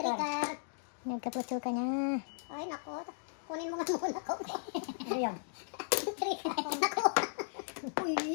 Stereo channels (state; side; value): silent; right; digital silence